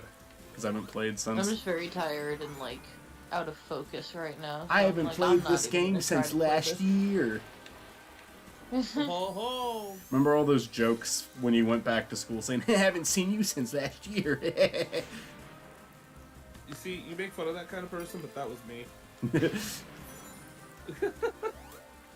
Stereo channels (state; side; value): identical; both; correlation 1.00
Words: because I haven't played since. I'm just very tired and like out of focus right now. So I haven't played this game since last year. Remember all those jokes when you went back to school saying, I haven't seen you since last year? You see, you make fun of that kind of person, but that was me. The